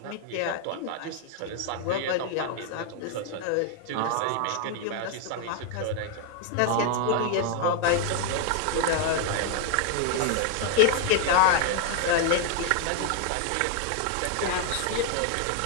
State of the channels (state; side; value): different; both; correlation 0.00